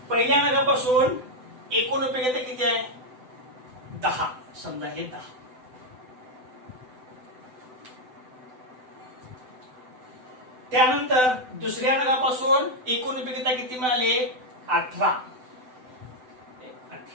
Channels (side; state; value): left; late; 7.9 ms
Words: पहिल्या नगापासून एकूण उपयोगिता किती आहे? 10. समजा हे 10. त्यानंतर दुसऱ्या नगापासून एकूण उपयोगिता किती मिळाले? 18.